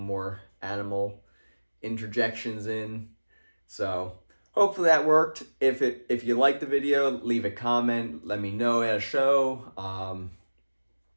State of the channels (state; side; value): inverted; both; correlation -1.00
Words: more animal interjections in, so hopefully that worked. If you liked the video, leave a comment. Let me know at a show.